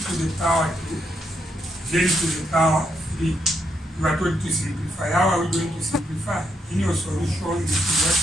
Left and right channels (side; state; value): both; normal; correlation 0.78